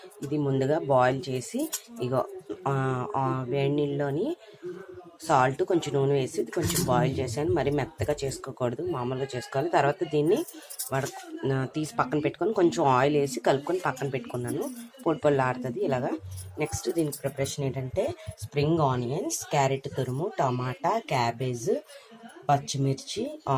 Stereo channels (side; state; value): both; identical; correlation 1.00